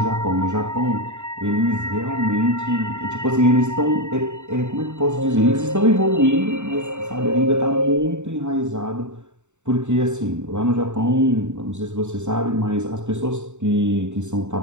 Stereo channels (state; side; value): late; left; 0.84 ms